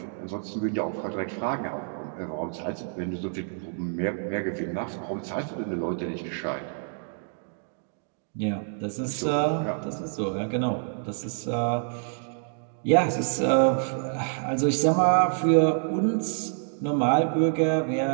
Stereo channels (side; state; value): left; silent; digital silence